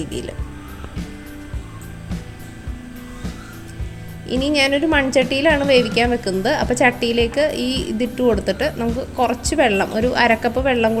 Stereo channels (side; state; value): both; identical; correlation 1.00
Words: ഇനി ഞാനൊരു മൺചട്ടിയിലാണ് വേവിക്കാൻ വെക്കുന്നത്. അപ്പോൾ ചട്ടിയിലേക്ക് ഈ ഇതിട്ട് കൊടുത്തിട്ട് നമുക്ക് കുറച്ച് വെള്ളം, ഒരു 1/2 കപ്പ് വെള്ളം